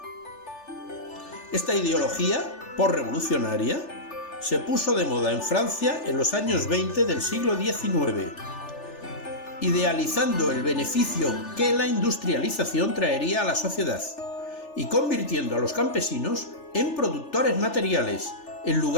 Esta ideología posrevolucionaria se puso de moda en Francia en los años 20 del siglo XIX, idealizando el beneficio que la industrialización traería a la sociedad y convirtiendo a los campesinos en productores materiales en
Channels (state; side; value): late; right; 3.4 ms